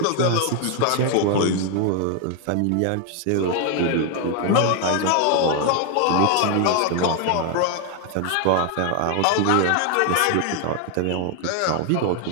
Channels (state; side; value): different; both; correlation 0.01